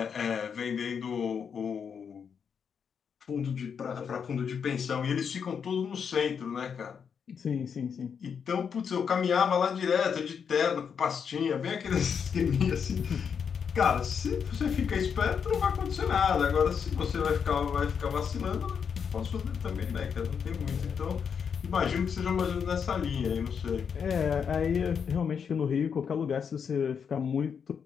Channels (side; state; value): right; quieter; 6.9 dB